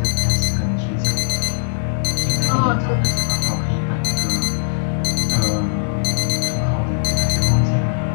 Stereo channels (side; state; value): right; silent; 63 dB below the other